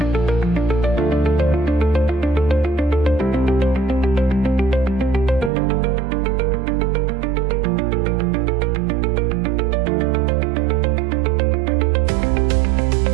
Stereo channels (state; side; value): drops out; left; at 5.5 s